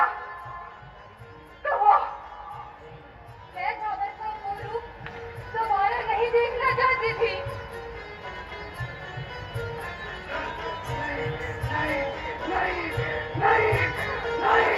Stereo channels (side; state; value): both; identical; correlation 1.00